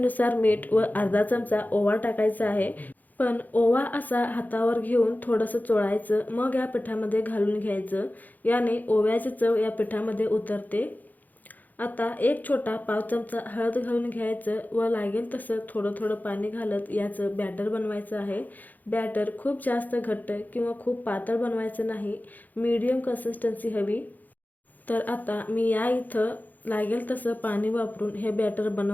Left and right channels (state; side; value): late; right; 0.083 ms